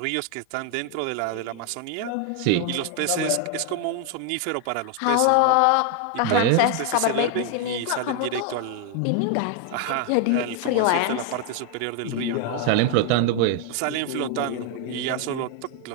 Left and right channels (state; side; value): different; both; correlation 0.00